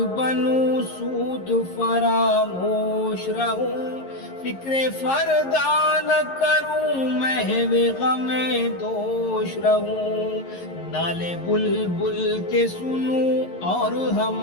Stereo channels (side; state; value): right; late; 11 ms